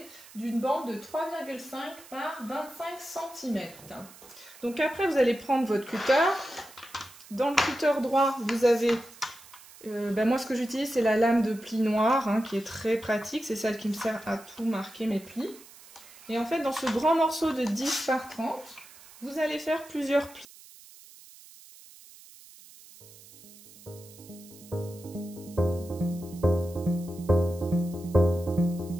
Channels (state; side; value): noise; right; hiss, 21 dB below the sound